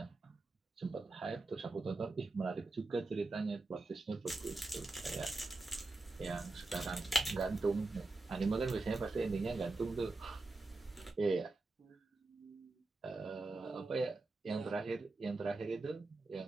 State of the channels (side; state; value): left; quieter; 3.2 dB